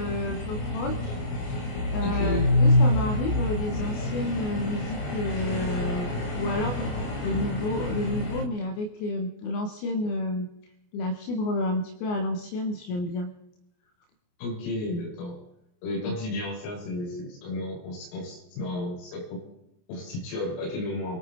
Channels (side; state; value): right; late; 28 ms